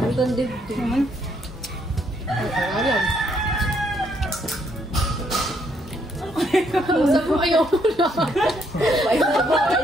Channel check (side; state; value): both; normal; correlation 0.71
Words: ganda dito. Naman. Alam. Saan mo ayaw mo lang?